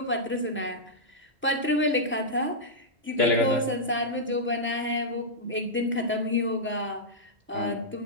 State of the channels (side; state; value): both; normal; correlation -0.10